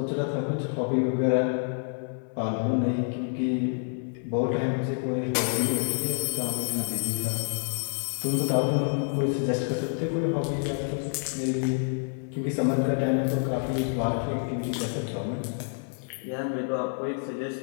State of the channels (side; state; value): right; silent; 55 dB below the other